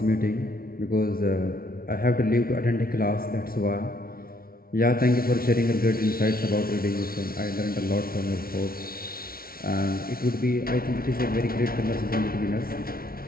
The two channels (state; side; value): late; right; 0.43 ms